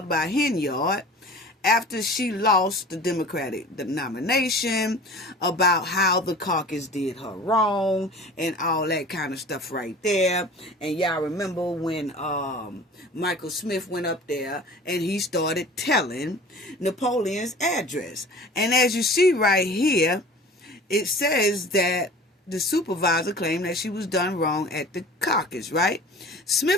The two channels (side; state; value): both; normal; correlation 0.42